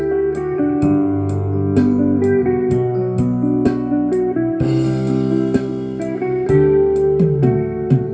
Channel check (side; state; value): both; identical; correlation 1.00